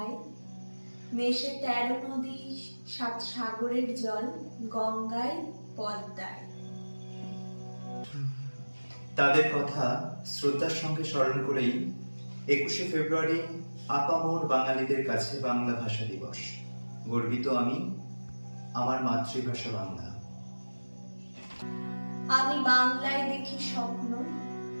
মেশে 13 নদী 7 সাগরের জল গঙ্গায় পদ্মায়। তাদের কথা শ্রদ্ধার সঙ্গে স্মরণ করেই 21শে ফেব্রুয়ারি আপামর বাঙালিদের কাছে বাংলা ভাষা দিবস। গর্বিত আমি, আমার মাতৃভাষা বাংলা। আমি বাংলায় দেখি স্বপ্ন,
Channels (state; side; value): inverted; both; correlation -1.00